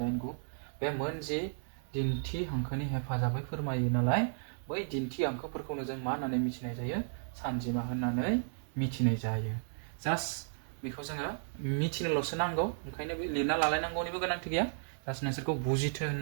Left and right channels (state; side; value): silent; left; digital silence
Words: 8 9 बे मोनजि दिन्थि हांखोनि हेफाजाबै फोरमायो नालाय बै दिन्थि हांखोफोरखौनो जों मा होननानै मिथिनाय जायो सानजिमा होननानै मिथिनाय जायो जास्ट बेखौ जोङो मिथिनोल'सो नांगौ ओंखायनो बे लिरना लालायनांगौनिबो गोनांथि गैया जास्ट नोंसोरखौ बुजिथो